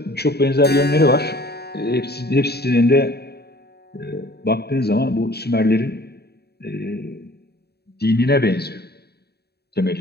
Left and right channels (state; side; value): late; right; 0.47 ms